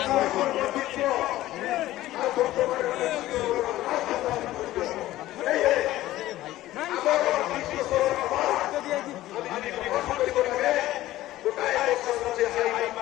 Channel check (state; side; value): quieter; right; 15.5 dB